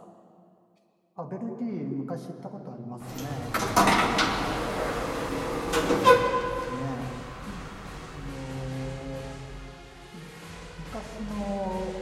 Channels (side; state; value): both; identical; correlation 1.00